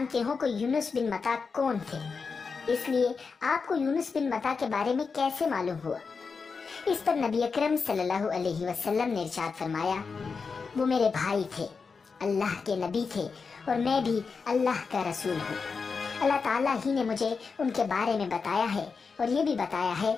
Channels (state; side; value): quieter; right; 5.0 dB